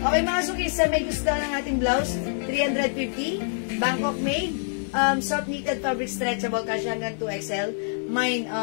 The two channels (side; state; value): right; silent; 61 dB below the other